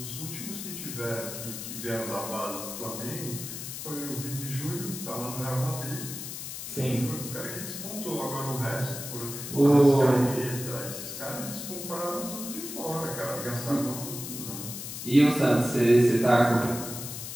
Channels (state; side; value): noise; left; hiss, 8 dB below the sound